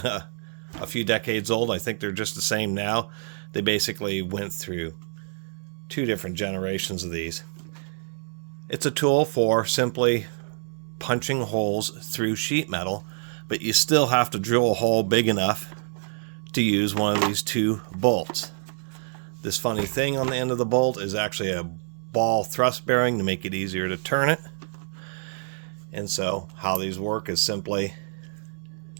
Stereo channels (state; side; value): silent; left; 61 dB below the other